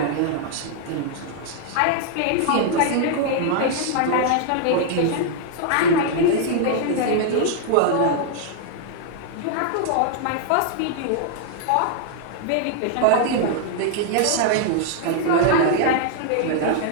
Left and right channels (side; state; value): both; different; correlation -0.01